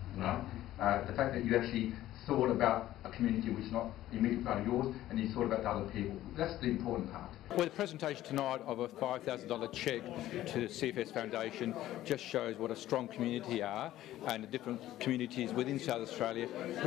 The fact that you actually thought about a community which is not immediately part of yours, and you thought about the other people. That's the important part. Well, the presentation tonight of a $5,000 cheque to the CFS Foundation just shows what a strong community are, and the different communities within South Australia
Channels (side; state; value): right; quieter; 14.1 dB